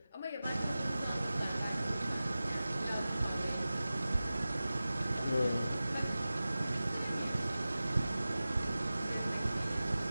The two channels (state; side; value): inverted; both; correlation -0.96